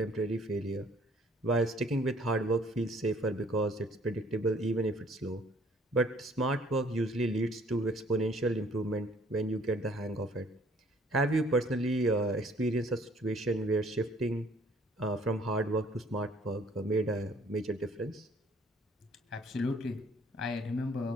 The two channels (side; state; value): both; normal; correlation 0.59